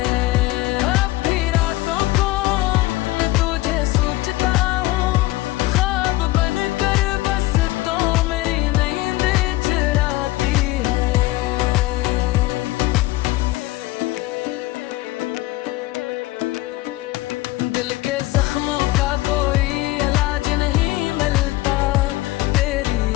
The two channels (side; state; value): right; quieter; 18.5 dB